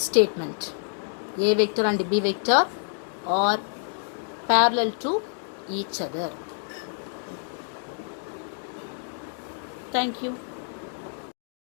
statement. A vector and B vector are parallel to each other. Thank you.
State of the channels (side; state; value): right; silent; digital silence